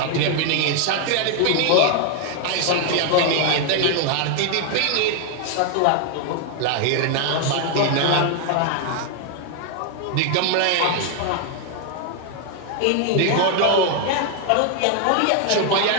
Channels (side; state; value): both; different; correlation 0.00